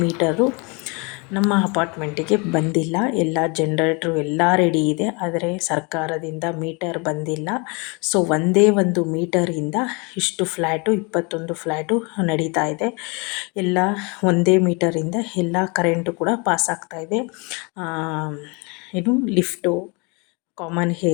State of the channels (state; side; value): quieter; right; 30.4 dB